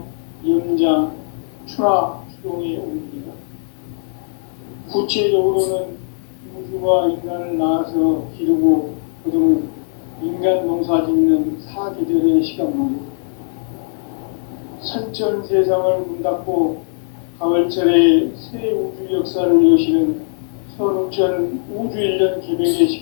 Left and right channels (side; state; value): right; silent; digital silence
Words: 염장, 추나 추동의 원리이다. 구체적으로는 우주가 인간을 낳아서 기르고 거두는 인간 농사 짓는 사계절의 시간 문제, 선천 세상을 문 닫고 가을철에 새 우주 역사를 여시는 선우천 우주일년 개백의